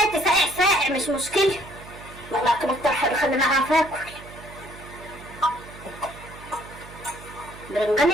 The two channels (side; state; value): right; noise; hum, 17 dB below the sound